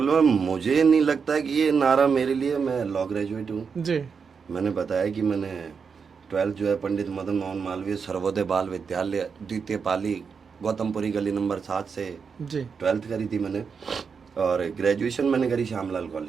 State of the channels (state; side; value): quieter; left; 5.8 dB